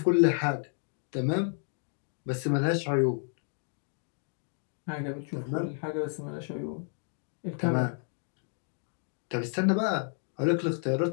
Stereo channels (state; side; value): silent; right; 55 dB below the other